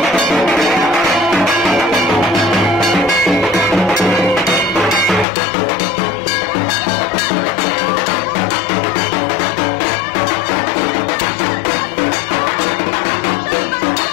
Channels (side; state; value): right; drops out; at 5.2 s